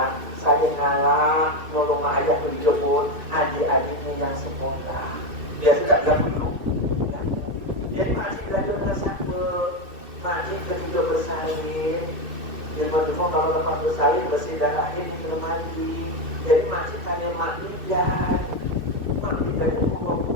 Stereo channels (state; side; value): late; left; 2.3 ms